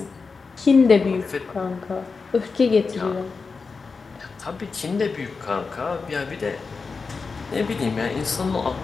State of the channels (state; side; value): quieter; right; 4.7 dB